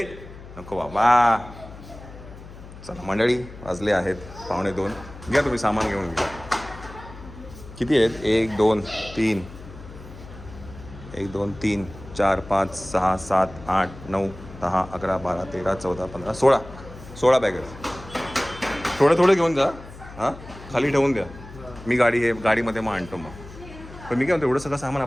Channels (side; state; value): left; noise; hum, 16 dB below the sound